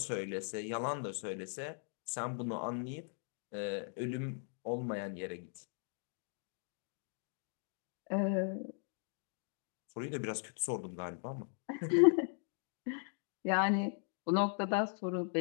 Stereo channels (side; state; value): right; silent; 52 dB below the other